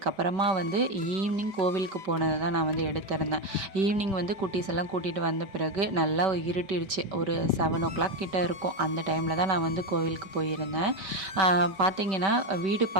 வந்து ஈவினிங் கோவிலுக்கு போனதை தான் நான் வந்து எடுத்திருந்தேன். ஈவினிங் வந்து குட்டீஸ் எல்லாம் கூட்டிகிட்டு வந்த பிறகு நல்லா இருட்டிடுச்சு. ஒரு 7 o'clock கிட்ட இருக்கும். அந்த டைமில் தான் நான் வந்து கோவிலுக்கு போயிருந்தேன். பார்த்திங்கன்னா வீடு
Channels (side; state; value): left; late; 5.2 ms